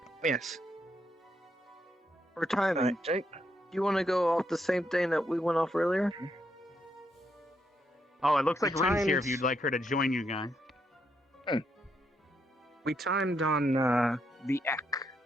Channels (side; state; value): both; normal; correlation 0.78